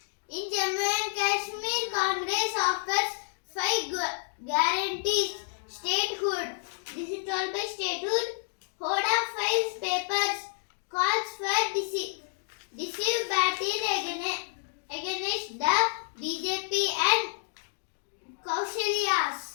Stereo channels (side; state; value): right; silent; digital silence